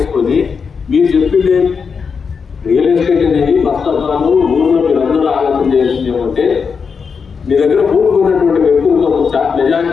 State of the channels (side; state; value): right; quieter; 5.8 dB